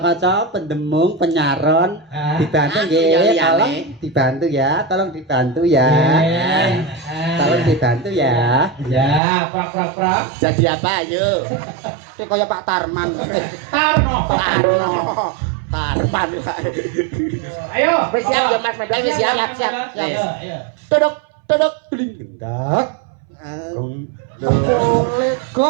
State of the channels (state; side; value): drops out; left; at 9.2 s